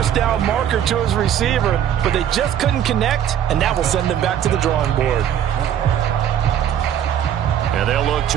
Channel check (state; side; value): quieter; left; 9.9 dB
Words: down marker to his receiver, but they just couldn't connect, and that will send them back to the drawing board. And they'll look